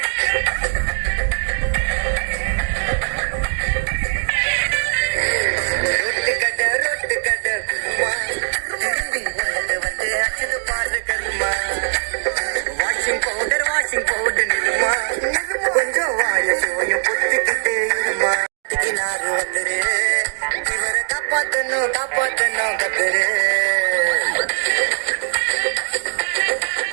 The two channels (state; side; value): silent; left; 56 dB below the other